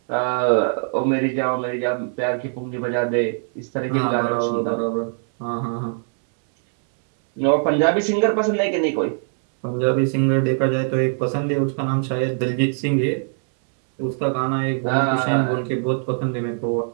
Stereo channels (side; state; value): left; silent; 65 dB below the other